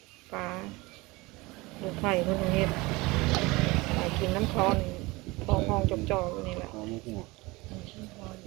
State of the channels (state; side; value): quieter; left; 22.8 dB